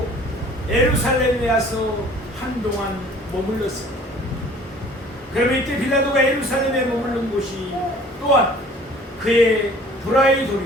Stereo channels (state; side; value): normal; both; correlation 0.51